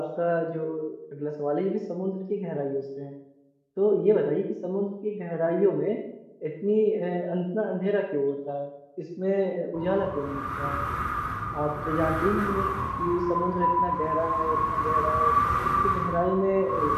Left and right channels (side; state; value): both; identical; correlation 1.00